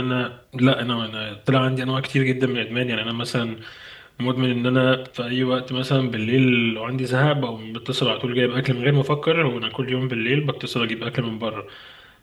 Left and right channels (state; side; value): identical; both; correlation 1.00